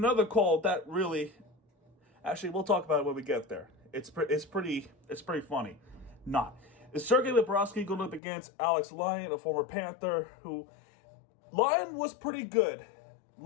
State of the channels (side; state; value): right; drops out; at 8.2 s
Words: call that really, actually, we'll talk about it when we get there. It's pretty funny. Not. Is Sergei Bobrovsky going up against Alex Lyon, a former Panther, who Lyon was pretty good.